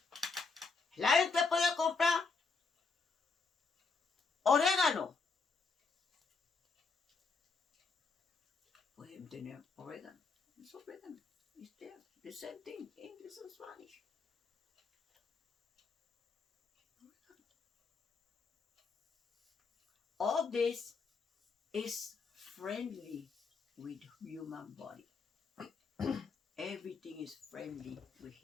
La gente puede comprar orégano. Pueden tener orégano. Es orégano. It's there. The same thing. English and Spanish. All this is friendly with human body. Everything is friendly with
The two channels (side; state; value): right; quieter; 4.5 dB